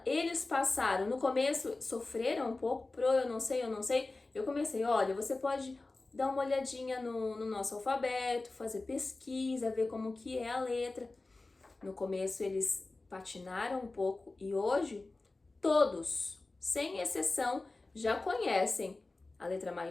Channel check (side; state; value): right; quieter; 3.3 dB